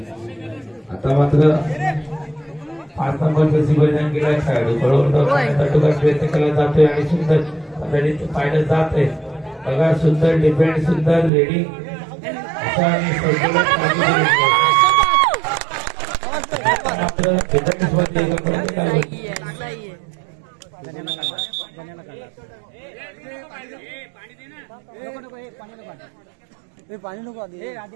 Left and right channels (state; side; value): drops out; left; at 11.3 s